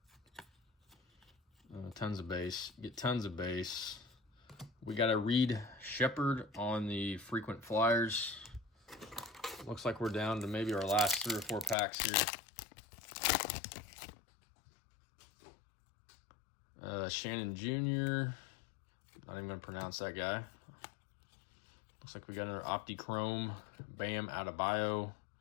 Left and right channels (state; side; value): drops out; right; at 11.8 s